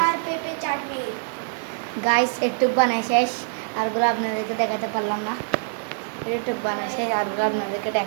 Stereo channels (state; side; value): silent; left; digital silence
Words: গাইস একটু বানাই শেষ, আরগুলো আপনাদেরকে দেখাতে পারলাম না। একটু বানাই শেষ, আরগুলো আপনাদেরকে